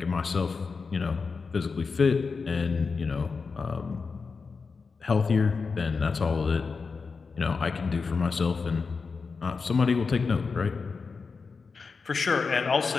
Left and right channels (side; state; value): right; quieter; 4.8 dB